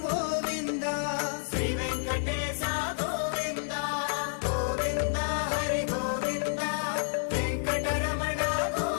Govinda Shri Venkatesha Govinda Govinda Hari Govinda Venkataramana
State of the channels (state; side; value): silent; right; digital silence